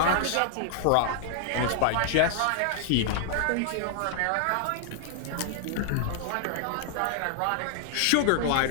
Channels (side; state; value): both; different; correlation -0.01